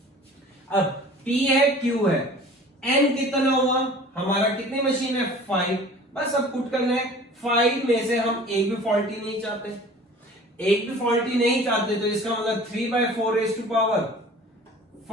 अब p है, q है, n कितना हुआ? हमारा कितनी मशीन है? 5, बस अब पुट करना है। 5 में से हम एक भी फॉल्टी नहीं चाहते, एक भी फॉल्टी नहीं चाहते, तो इसका मतलब 3/4 raise to power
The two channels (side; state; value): both; normal; correlation 0.45